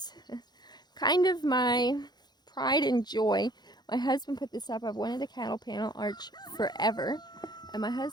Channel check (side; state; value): right; late; 0.20 ms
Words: kind of my pride and joy. My husband put this up. I've wanted a cattle panel arch forever, and my